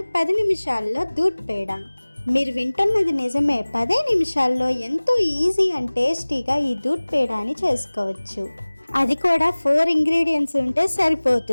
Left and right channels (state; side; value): inverted; both; correlation -1.00